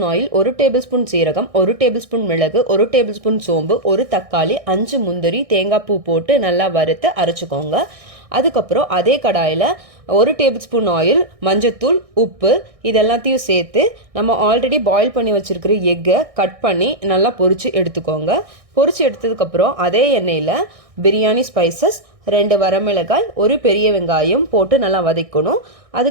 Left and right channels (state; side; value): late; left; 1.6 ms